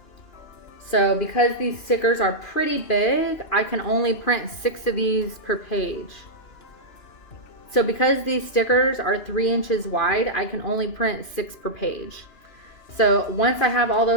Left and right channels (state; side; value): late; right; 2.9 ms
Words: So because these stickers are pretty big, I can only print 6 of these per page. So because these stickers are 3 inches wide, I can only print 6 per page. So once I have all